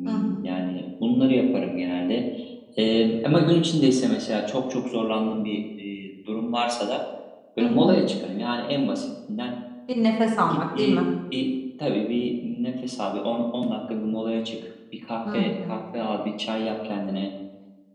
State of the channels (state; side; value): identical; both; correlation 1.00